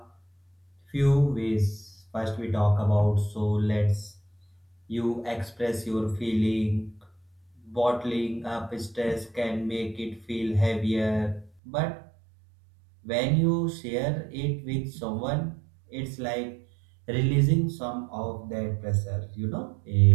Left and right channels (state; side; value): drops out; left; at 11.5 s